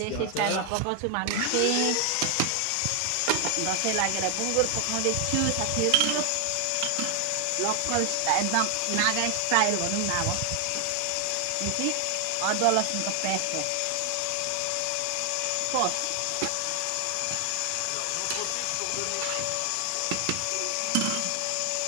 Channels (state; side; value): different; both; correlation 0.00